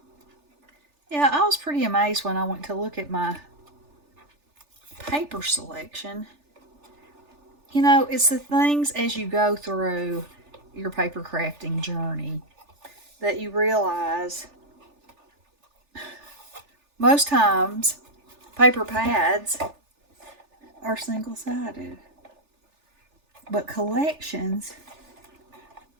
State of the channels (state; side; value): late; left; 3.4 ms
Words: Yeah, I was pretty amazed when I went to look at my paper selection. You know, it's the things as you go through your paper crafting journey that you realize most times paper pads are single-sided, but collections